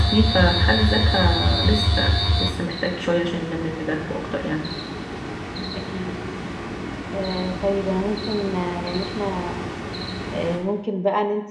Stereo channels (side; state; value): both; identical; correlation 1.00